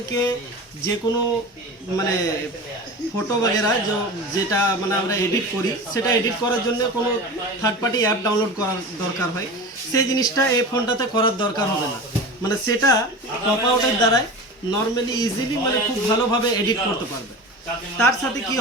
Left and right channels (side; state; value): both; normal; correlation 0.31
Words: যে কোনো মানে ফটো বগেরা যেটা মানে আমরা এডিট করি, সেটা এডিট করার জন্য কোনো থার্ড পার্টি অ্যাপ ডাউনলোড করার দরকার হয়, সেই জিনিসটা এই ফোনটাতে করার দরকার হবে না। মানে সেটা পপ আউটের দ্বারাই নর্মালি ইজিলি মানে খুব ভালোভাবে এডিট করতে পারবে। তার সাথে কি